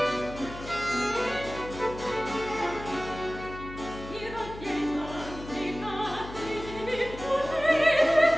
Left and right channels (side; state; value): left; noise; hum, 13 dB below the sound